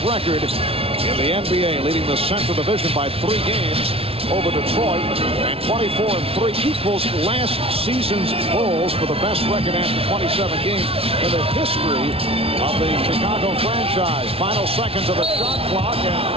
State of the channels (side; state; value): left; late; 0.27 ms